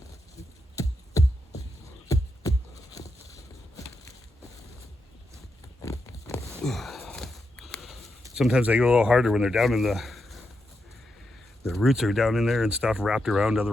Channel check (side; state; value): both; normal; correlation 0.85